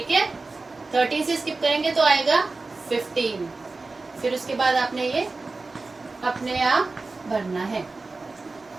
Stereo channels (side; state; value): left; quieter; 3.6 dB